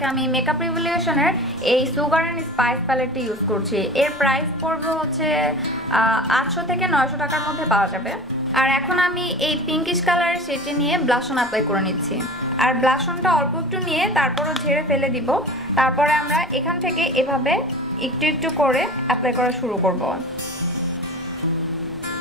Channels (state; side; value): normal; both; correlation 0.37